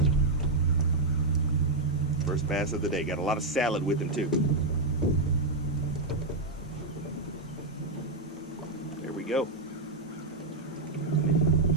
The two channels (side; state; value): left; quieter; 3.1 dB